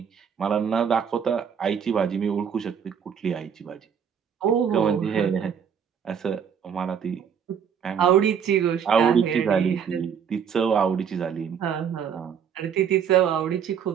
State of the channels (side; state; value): left; quieter; 7.6 dB